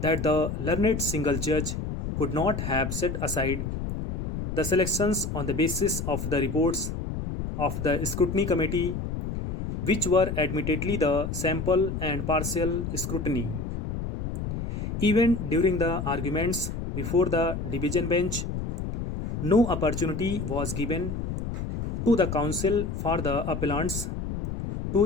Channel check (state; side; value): noise; left; rumble, 4 dB below the sound